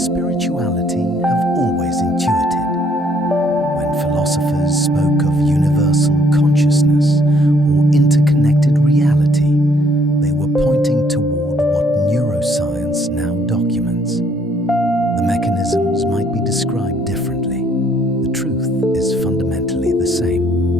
have always intuited. When philosophers spoke of universal consciousness or interconnected reality, they were pointing toward what neuroscience now documents. The mechanisms might be described differently. The truth is fundamentally the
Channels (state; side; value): normal; both; correlation 0.65